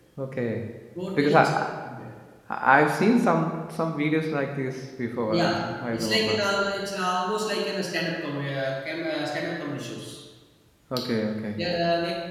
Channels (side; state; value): both; identical; correlation 1.00